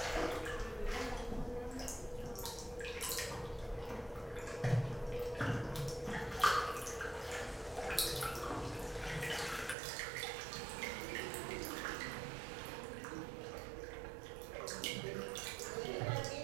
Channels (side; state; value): left; drops out; at 9.8 s